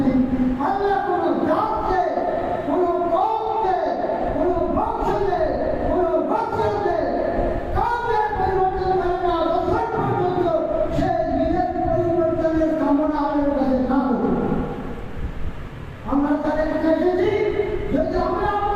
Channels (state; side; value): identical; both; correlation 1.00